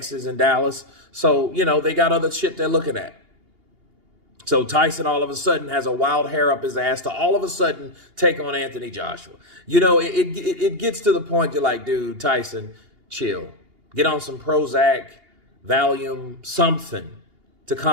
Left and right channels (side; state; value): left; late; 2.8 ms